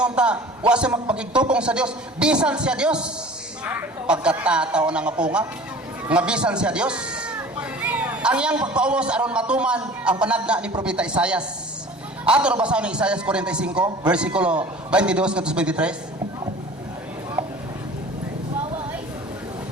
ta, wa siya magpakigtupong sa Dios, bisan siya Dios. Pagkatataw na nga punga, nga bisan siya Dios. Ang iyang pagpaubos aron matuman ang panagna ni Propeta Isaias. Ato na basahin ni Isaias 45, versikulo 22 ngadto 23.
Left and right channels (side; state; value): both; normal; correlation 0.43